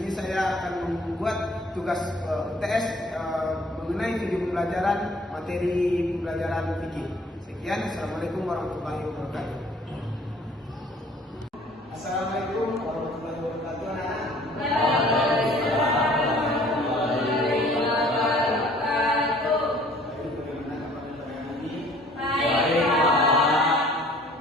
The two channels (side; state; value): both; normal; correlation 0.55